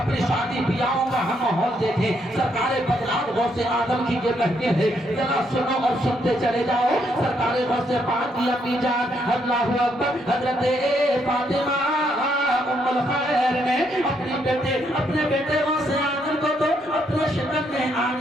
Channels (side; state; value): both; normal; correlation 0.74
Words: شادی بیاہوں کا ہم ماحول دیکھیں۔ سرکار بدلات غوث آدم کی یہ کہتے ہیں، ذرا سنو اور سنتے چلے جاؤ۔ سرکار غوث پاک کی امی جان اللہ اکبر حضرت فاطمہ ام الخیر نے اپنے بیٹے غوث آدم کو تو اپنے شکم میں